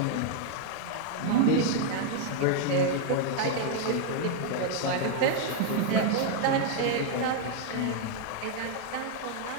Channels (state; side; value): different; both; correlation 0.00